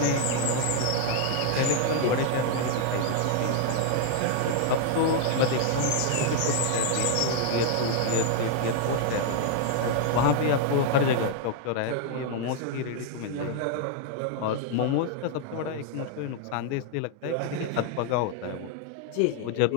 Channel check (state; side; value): different; both; correlation 0.00